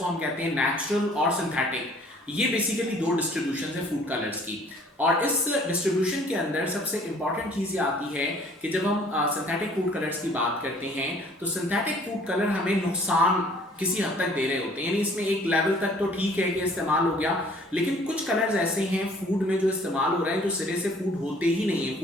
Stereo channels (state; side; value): normal; both; correlation 0.56